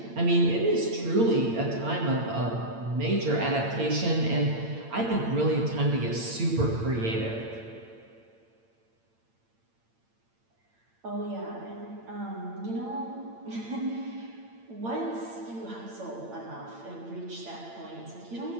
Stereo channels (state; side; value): late; left; 8.8 ms